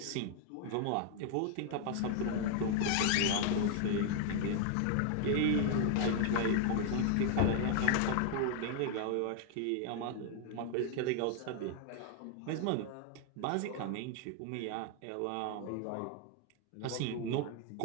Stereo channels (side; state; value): both; different; correlation 0.00